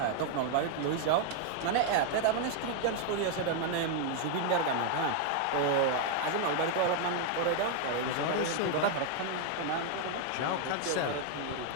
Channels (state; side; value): different; both; correlation 0.00